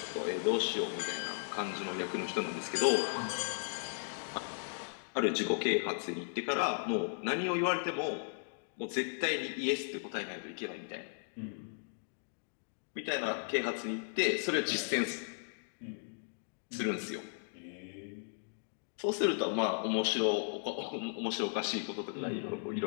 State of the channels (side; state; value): right; silent; digital silence